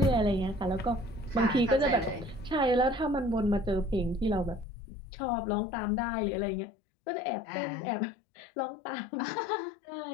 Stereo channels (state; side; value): drops out; right; at 4.7 s